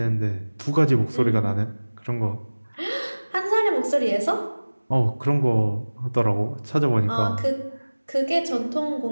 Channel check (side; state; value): both; inverted; correlation -1.00